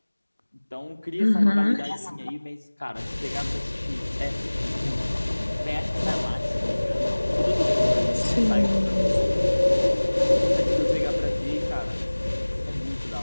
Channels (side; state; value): both; inverted; correlation -1.00